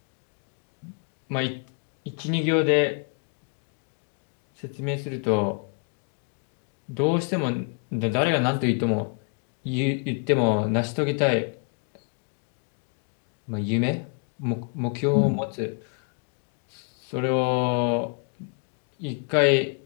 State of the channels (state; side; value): quieter; right; 39.5 dB